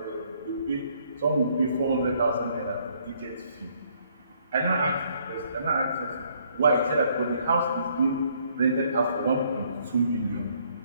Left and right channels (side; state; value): both; inverted; correlation -0.66